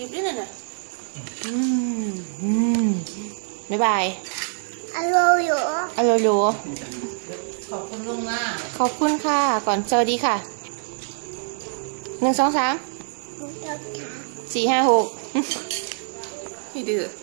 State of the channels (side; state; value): left; silent; 62 dB below the other